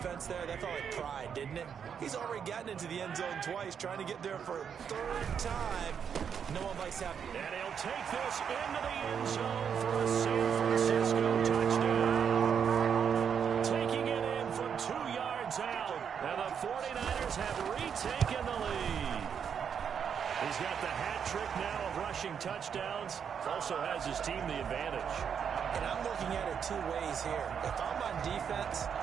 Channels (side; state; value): left; quieter; 7.4 dB